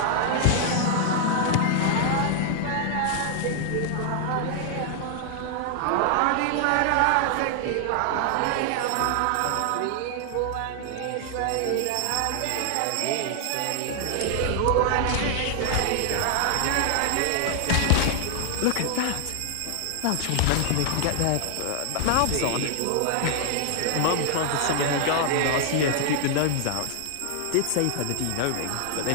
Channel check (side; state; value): both; different; correlation 0.00